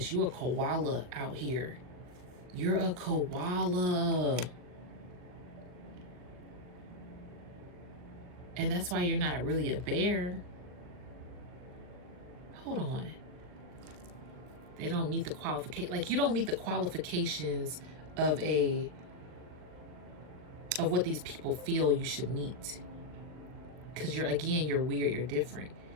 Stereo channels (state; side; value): late; left; 39 ms